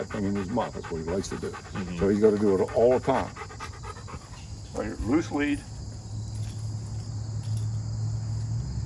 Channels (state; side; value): identical; both; correlation 1.00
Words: thing in his mouth. That's what he likes to do. So he's got to do it all the time. Right here, loose lead.